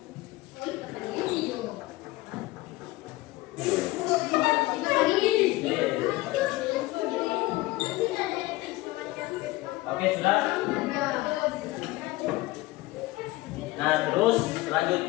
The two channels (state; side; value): quieter; right; 19.5 dB